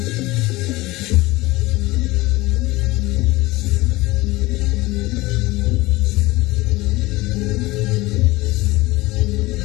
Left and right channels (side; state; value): right; quieter; 20.4 dB